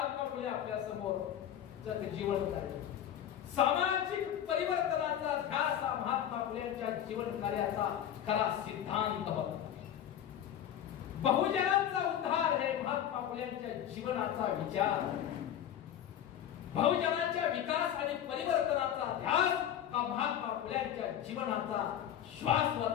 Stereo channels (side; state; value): right; quieter; 10.3 dB